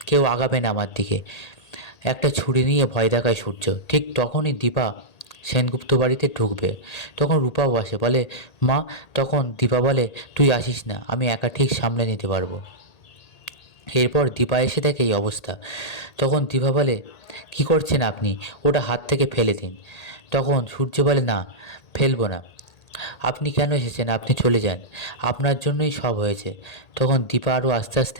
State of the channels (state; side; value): late; right; 1.8 ms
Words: কেউ আগাবে না আমার দিকে। একটা ছুরি নিয়ে ভয় দেখায় সূর্য। ঠিক তখনই দীপা সেনগুপ্ত বাড়িতে ঢুকবে। তখন রূপাও আসে, বলে, মা। তখন দীপা বলে, তুই আসিস না, আমি একা ঠিক সামলে নিতে পারবো। এরপর দীপা এসে দেখে এই অবস্থা। তখন দীপা বলে, কি করছেন আপনি? ওটা হাত থেকে ফেলে দিন। তখন সূর্য বলে, না, ফেলবো না। আপনি কেন এসেছেন? আপনি চলে যান, আপনার জন্যই সব হয়েছে। তখন দীপা আরও আস্তে